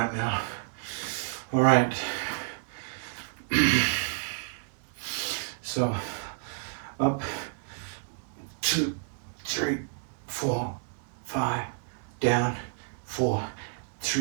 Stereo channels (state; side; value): silent; left; digital silence